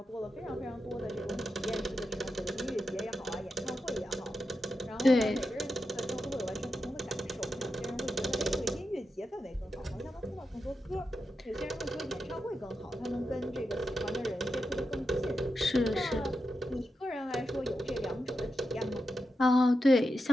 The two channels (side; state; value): both; normal; correlation 0.88